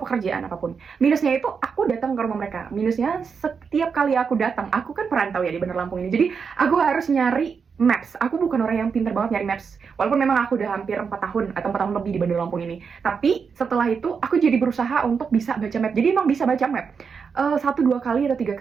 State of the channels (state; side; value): quieter; left; 5.9 dB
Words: apapun. Minusnya itu aku datang ke rumah mereka. Minusnya setiap kali aku datang, aku kan perantau ya di Bandar Lampung ini. Jadi aku harus nyari maps. Aku bukan orang yang pintar banget nyari maps. Walaupun memang aku udah hampir 4 tahun atau 4 tahun lebih di Bandar Lampung ini. Tapi setelah itu aku jadi berusaha untuk bisa baca map. Jadi emang bisa baca map. 1-2 kali atau 3